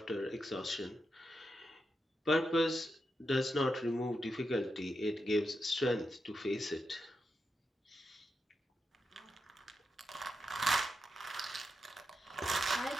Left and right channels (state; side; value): normal; both; correlation 0.86